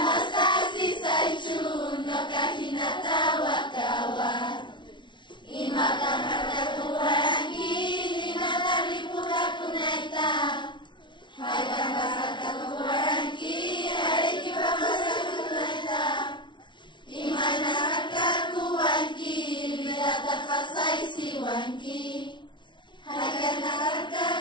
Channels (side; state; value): right; late; 0.23 ms